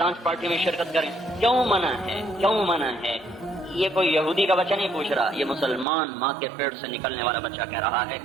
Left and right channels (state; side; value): drops out; left; at 5.9 s